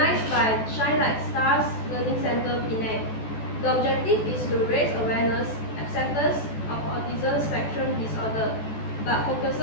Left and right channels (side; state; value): right; late; 14 ms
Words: by Shine Like Stars Learning Center, Penang. The objective is to raise awareness, acceptance of autism spectrum disorder, but